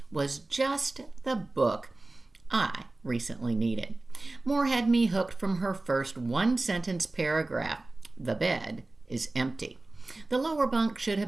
was just the book I recently needed. Moore had me hooked from her first one-sentence paragraph, "The bed is empty." The lower bunk should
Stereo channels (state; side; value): quieter; left; 3.0 dB